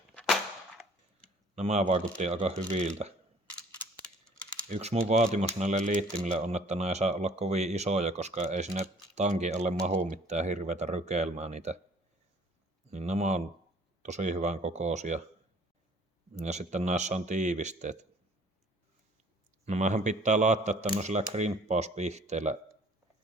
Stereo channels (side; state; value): both; normal; correlation 0.55